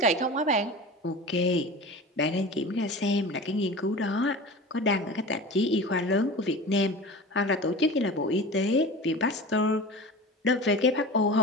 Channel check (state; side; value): normal; both; correlation 0.33